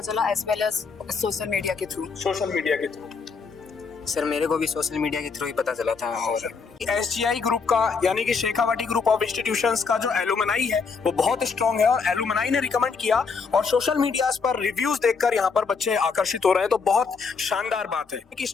चला, as well as social media के थ्रू। सोशल मीडिया के थ्रू? सर मेरे को भी सोशल मीडिया के थ्रू ही पता चला था। SGI ग्रुप का यानी कि शेखावाटी ग्रुप ऑफ इंस्टीट्यूशंस का जो एलुमनाई है वो बहुत स्ट्रांग है और एलुमनाई ने रिकमेंड किया और सोशल मीडिया पर रिव्यूज देखकर यहाँ पर बच्चे आकर्षित हो रहे हैं। तो बहुत शानदार बात है कि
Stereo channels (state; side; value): quieter; right; 5.1 dB